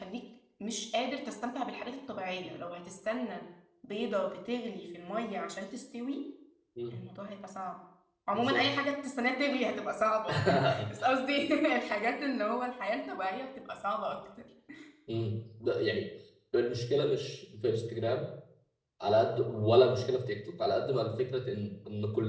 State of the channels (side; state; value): both; identical; correlation 1.00